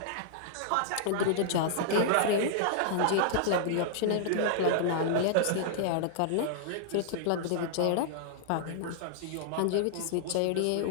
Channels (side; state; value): both; different; correlation -0.01